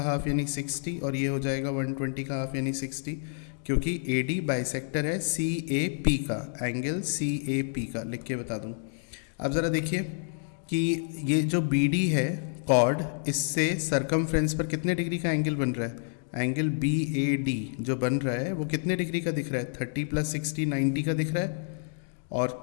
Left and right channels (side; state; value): right; silent; digital silence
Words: हाफ यानी 60, और ये हो जाएगा 120 का हाफ यानी 60, क्योंकि AD बाइसेक्टर है CAP का, एंगल CAP का. लिख के बता दूँ. अब ज़रा देखिए कि ये जो BD है कॉर्ड, इससे सरकमफ्रेंस पर कितने डिग्री का एंगल बन रहा है? एंगल BAD जो बन रहा है वो कितने डिग्री का दिख रहा है? 30 प्लस 60 90 का दिख रहा है.